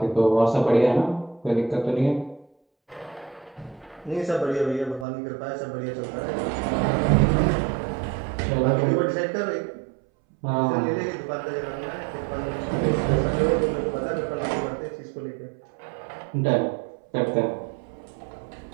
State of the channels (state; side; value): drops out; left; at 5.1 s